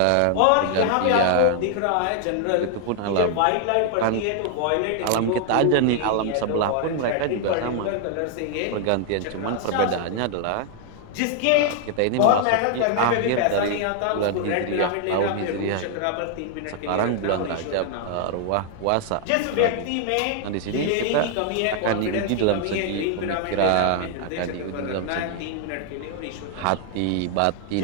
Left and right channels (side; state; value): both; different; correlation 0.00